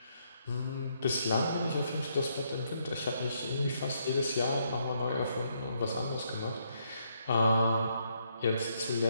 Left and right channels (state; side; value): inverted; both; correlation -0.74